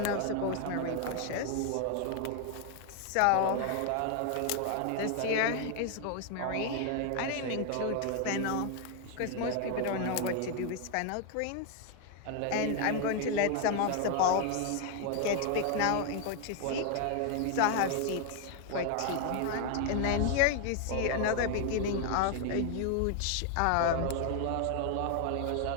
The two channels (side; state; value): both; different; correlation 0.00